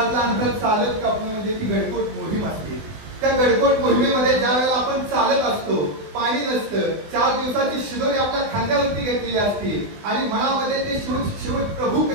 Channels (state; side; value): late; left; 20 ms